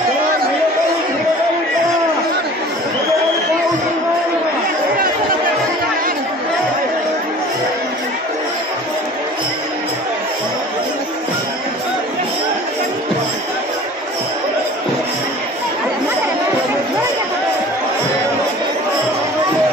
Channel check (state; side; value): normal; both; correlation 0.44